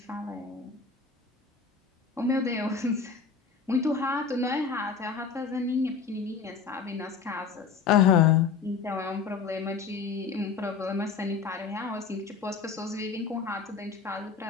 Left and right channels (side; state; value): right; quieter; 5.6 dB